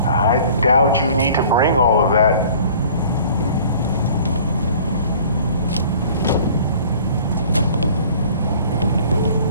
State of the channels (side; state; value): both; inverted; correlation -0.50